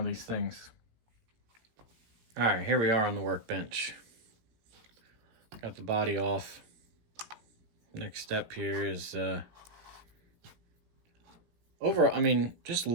these things. All right, here we are on the workbench. Got the body off. Next step here is just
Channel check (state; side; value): late; left; 17 ms